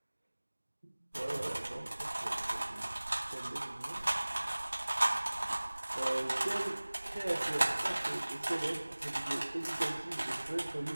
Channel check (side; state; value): both; inverted; correlation -1.00